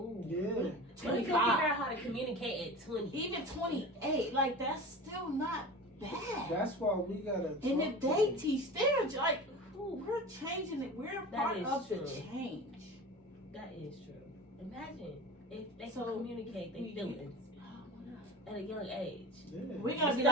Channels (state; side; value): normal; both; correlation 0.32